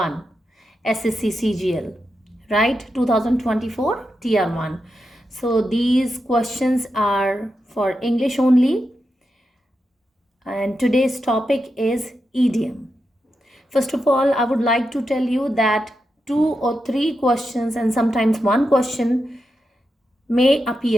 SSC CGL, right? 2024 Tier 1. So, these questions are for English only, and today's topic is idiom. First of all, I would like to tell you that 2 or 3 questions and sometimes one question may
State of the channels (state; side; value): normal; both; correlation 0.87